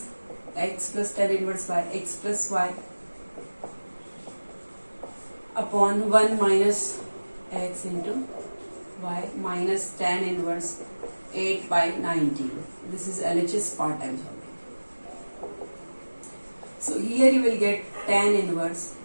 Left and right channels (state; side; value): inverted; both; correlation -1.00